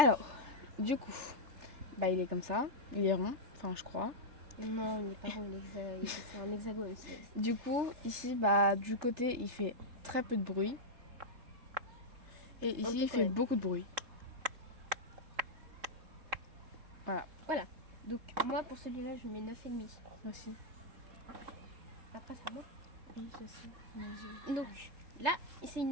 du coup, bah il est comme ça. Il est rond, enfin je crois. Non, il n'est pas rond, c'est un hexagone. Du coup, ici, bah du côté, il fait très peu de bruit. Et ici, il fait beaucoup de bruit. Voilà. Donc, moi, pour celui-là, je mets 9,5. Aussi. Après, c'est à moi. Oui, je sais. Donc, là, c'est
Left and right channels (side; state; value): left; late; 3.7 ms